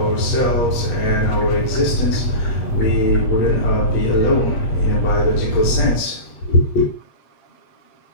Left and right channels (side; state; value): right; late; 8.4 ms